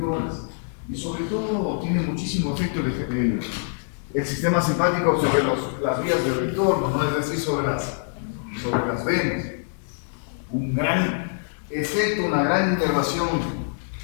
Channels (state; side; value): silent; right; digital silence